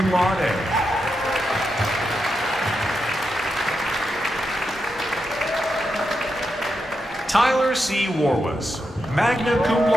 laude. Tyler C. Warwas, magna cum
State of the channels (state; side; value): normal; both; correlation 0.86